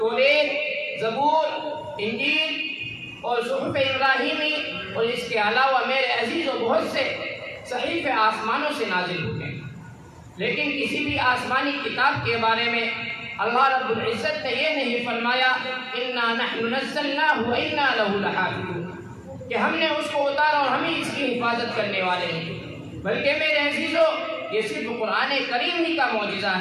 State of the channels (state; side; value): identical; both; correlation 1.00